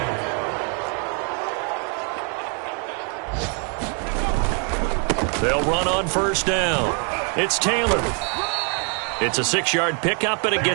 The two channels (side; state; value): left; quieter; 39.6 dB